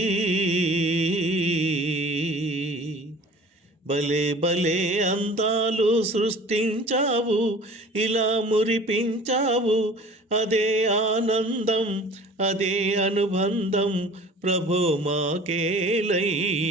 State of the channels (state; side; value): normal; both; correlation 0.45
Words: భలే భలే అందాలు సృష్టించావు, ఇలా మురిపించావు. అదే ఆనందం అదే అనుబంధం ప్రభో మాకేలయ్యవు.